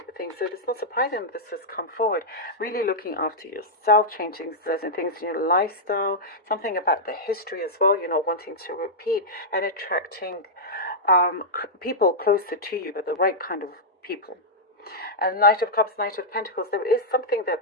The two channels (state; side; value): normal; both; correlation -0.08